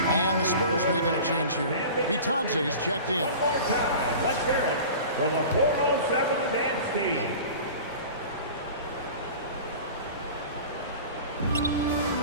And the Spurs making a change here. Vitadze is checked in. One more time. Let's hear it for the 407 dance team.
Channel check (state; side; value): inverted; both; correlation -0.38